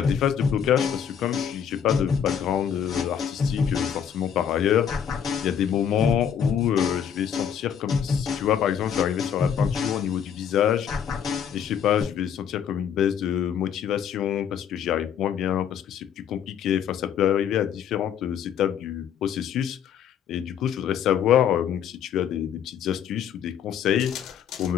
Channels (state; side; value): quieter; right; 8.4 dB